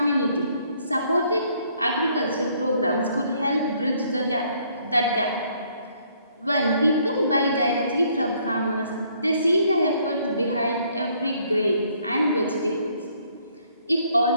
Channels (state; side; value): inverted; both; correlation -0.66